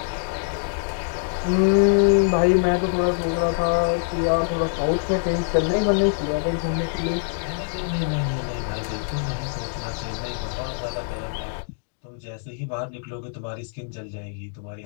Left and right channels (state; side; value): silent; right; digital silence